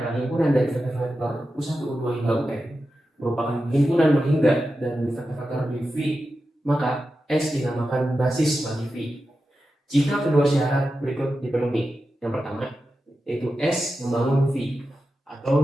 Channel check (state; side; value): normal; both; correlation 0.91